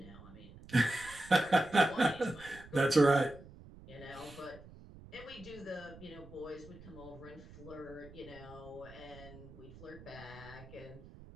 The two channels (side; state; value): right; noise; rumble, 18 dB below the sound